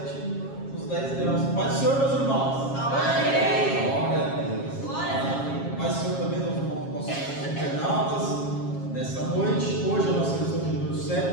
nos 10 graus. Paz do Senhor, meus irmãos. Amém. Glória a Deus. Paz do Senhor também, nossos internautas. Nessa noite, hoje é a nossa lição de número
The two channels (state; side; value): late; right; 7.4 ms